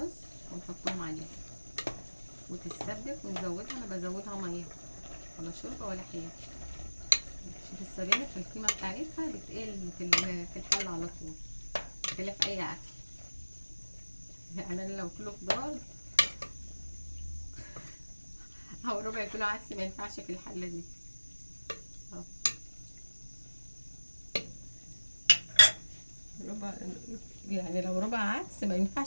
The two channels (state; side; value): inverted; both; correlation -1.00